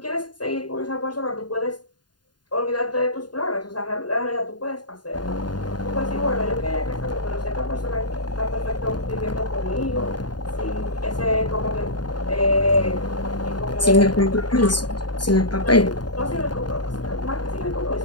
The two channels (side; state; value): right; late; 0.70 ms